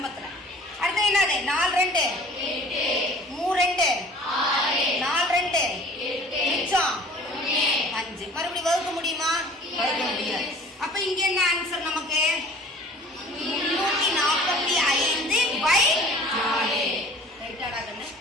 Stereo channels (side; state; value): both; normal; correlation 0.49